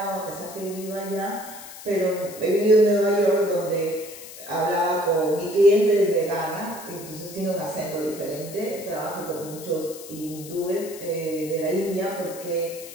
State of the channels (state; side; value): noise; left; hiss, 15 dB below the sound